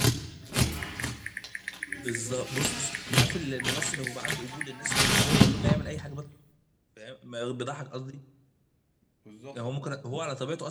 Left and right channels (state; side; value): identical; both; correlation 1.00